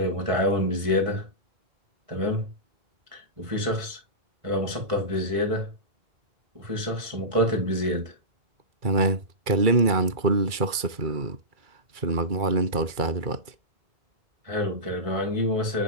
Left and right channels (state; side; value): late; left; 2.3 ms